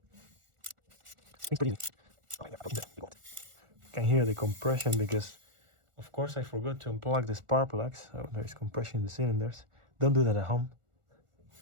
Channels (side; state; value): left; late; 1.4 ms